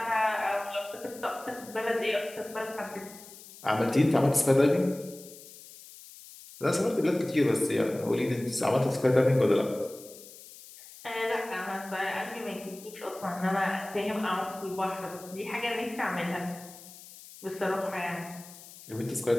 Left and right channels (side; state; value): left; noise; hiss, 18 dB below the sound